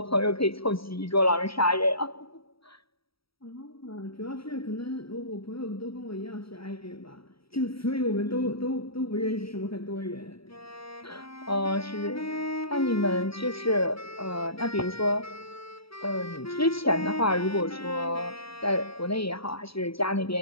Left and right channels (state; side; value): late; right; 0.75 ms